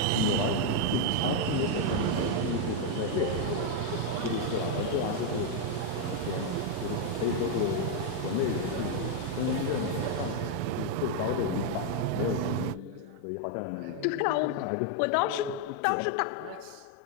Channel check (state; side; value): different; both; correlation 0.00